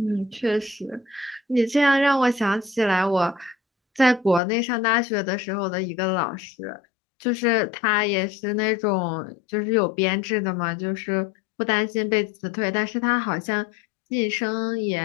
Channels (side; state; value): right; drops out; at 4.4 s